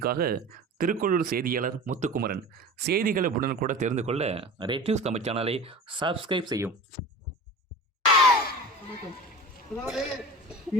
திருக்கோளூர் செய்தியாளர் முத்துக்குமரன். செய்திகளை உடனுக்குடன் தெரிந்து கொள்ள ரெட் நியூஸ் தமிழ் சேனலை சப்ஸ்கிரைப் செய்யும். அதாவது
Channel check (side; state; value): both; normal; correlation 0.35